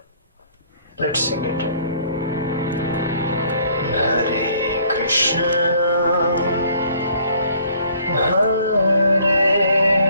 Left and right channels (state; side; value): inverted; both; correlation -0.58